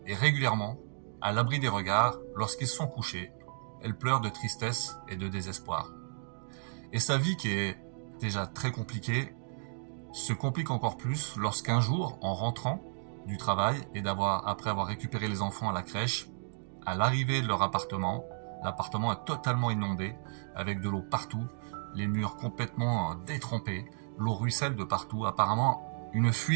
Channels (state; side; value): silent; left; digital silence